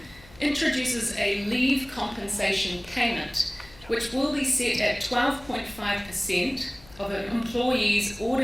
introduces a leave compensation payment, which will be set at 12.5% of an employee's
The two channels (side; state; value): left; noise; hum, 23 dB below the sound